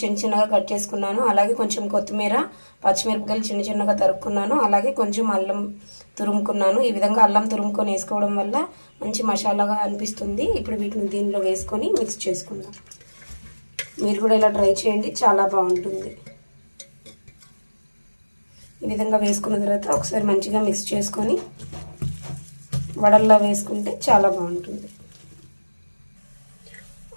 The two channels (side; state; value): both; inverted; correlation -1.00